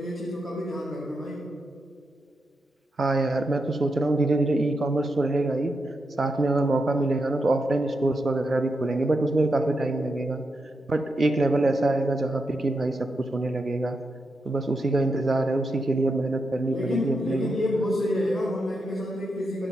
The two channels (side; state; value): both; normal; correlation 0.85